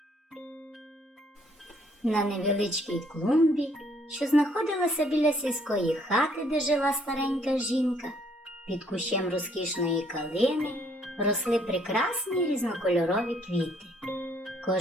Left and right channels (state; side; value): normal; both; correlation 0.65